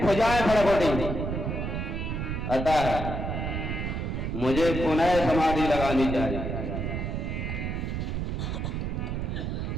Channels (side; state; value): right; noise; rumble, 2 dB below the sound